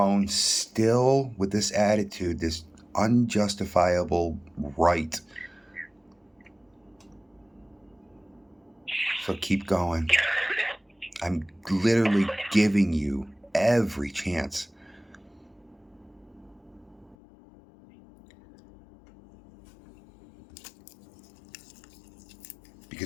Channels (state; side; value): drops out; right; at 17.2 s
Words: still with this attitude, this unjustifiable right. So keep going. I'm literally giving you every chance.